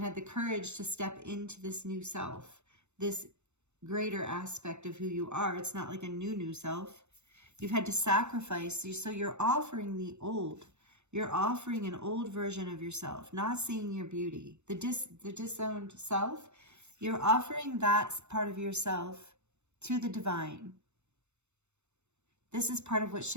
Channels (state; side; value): late; left; 0.82 ms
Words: had the courage to step into this new self, this greater aspect of who you are. It's not like a new self. You've had to sacrifice. So you're offering the old. You're offering an old version of yourself, not seeing your beauty. The disowned self, you're offering that part of yourself to the divine. This is part of what